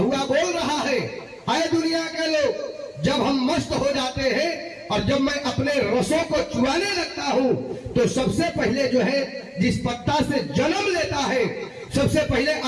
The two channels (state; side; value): identical; both; correlation 1.00